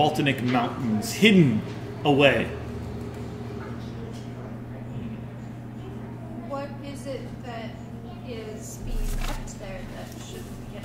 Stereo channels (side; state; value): both; identical; correlation 1.00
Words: Mountains, hidden away. What is it that is being kept there that shouldn't get